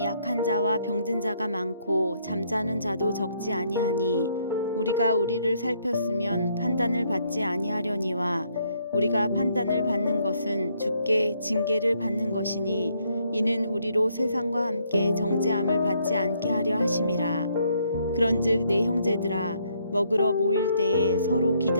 약한 자와 병든 자가 많고 잠자는 자도 적지 아니하니 우리가 우리를 살폈으면 판단을 받지 아니하려니와 우리가 판단을 받는 것은 주께 징계를 받는 것이니 이는 우리로 세상과 함께 정죄함을 받지 않게 하려 하심이라. 그런즉 내 형제들아 먹으러 모일 때에 서로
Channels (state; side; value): inverted; both; correlation -0.71